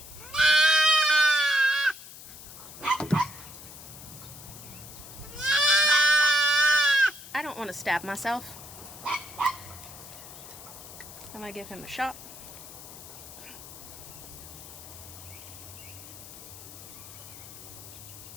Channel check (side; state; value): left; noise; hiss, 15 dB below the sound